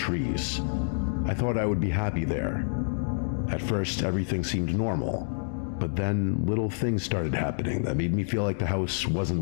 I thought I would be happy there. At first, everything seemed normal, but then little things started happening that made me feel like the house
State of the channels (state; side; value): silent; right; digital silence